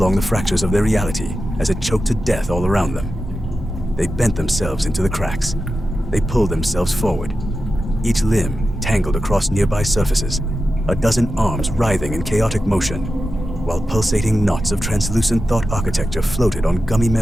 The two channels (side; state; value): both; normal; correlation 0.92